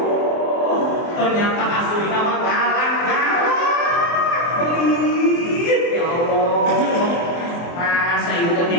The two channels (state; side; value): late; right; 24 ms